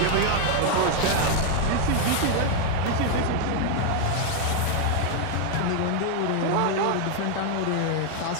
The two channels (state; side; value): different; both; correlation 0.00